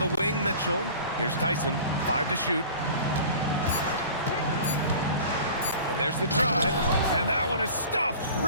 wing, Mitchell. Here's Tyson. 5 to shoot. And there's the drive. And that one is stuffed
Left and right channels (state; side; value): inverted; both; correlation -0.42